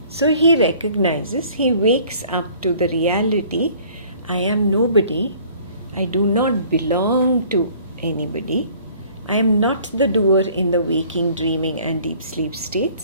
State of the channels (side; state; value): both; inverted; correlation -0.54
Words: So he recognizes, he wakes up to the reality, I am nobody, I do not belong to anybody, I am not the doer in the waking, dreaming and deep sleep